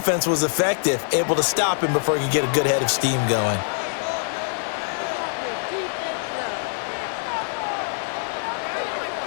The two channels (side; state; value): right; silent; digital silence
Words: was effective, able to stop him before he could get a good head of steam going.